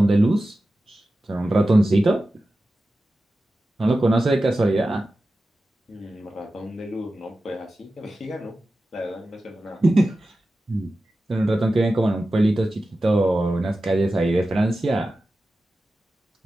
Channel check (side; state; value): both; normal; correlation 0.93